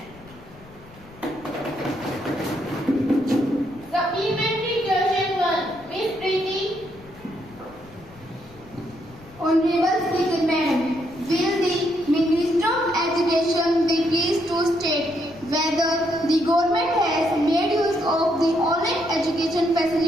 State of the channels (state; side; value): noise; left; rumble, 23 dB below the sound